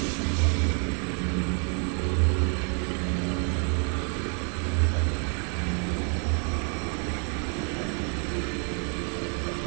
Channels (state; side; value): quieter; left; 39.9 dB